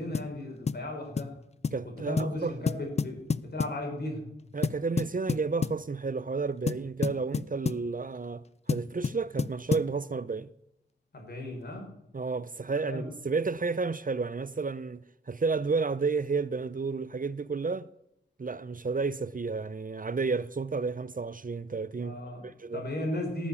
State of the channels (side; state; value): both; normal; correlation 0.52